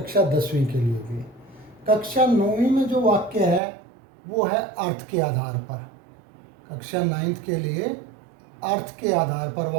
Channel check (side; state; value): left; drops out; at 3.6 s